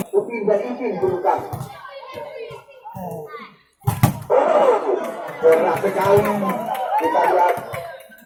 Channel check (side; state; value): both; identical; correlation 1.00